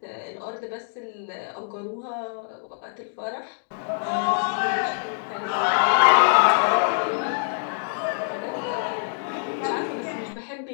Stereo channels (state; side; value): silent; right; digital silence